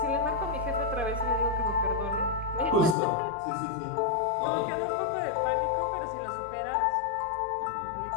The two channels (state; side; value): drops out; right; at 3.0 s